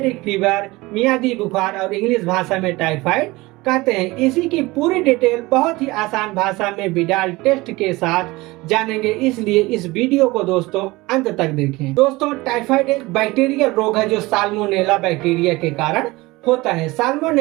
फीवर, मियादी बुखार और इंग्लिश भाषा में टाइफाइड कहते हैं। इसी की पूरी डिटेल बहुत ही आसान भाषा में विडाल टेस्ट के साथ जानेंगे, इसलिए इस वीडियो को दोस्तों अंत तक देखें। दोस्तों टाइफाइड एक बैक्टीरियल रोग है जो साल्मोनेला बैक्टीरिया के कारण होता है।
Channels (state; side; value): quieter; left; 21.2 dB